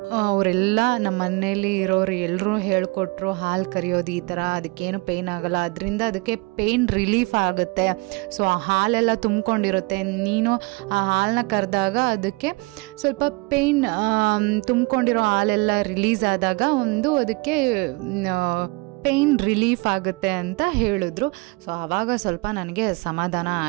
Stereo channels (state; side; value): quieter; left; 26.9 dB